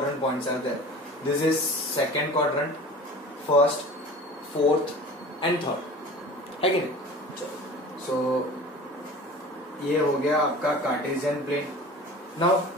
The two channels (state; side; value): normal; both; correlation 0.40